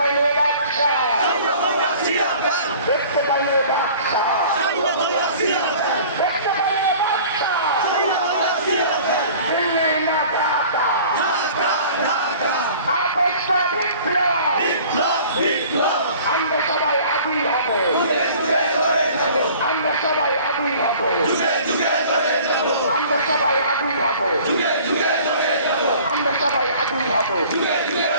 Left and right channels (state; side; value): inverted; both; correlation -0.47